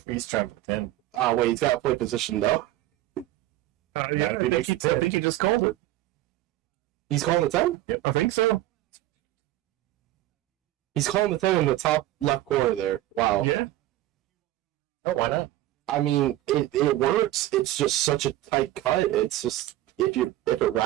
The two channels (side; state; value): left; quieter; 15.1 dB